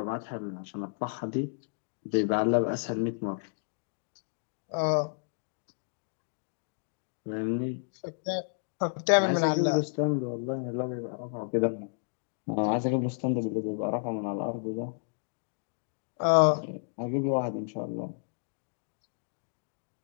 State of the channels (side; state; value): right; silent; digital silence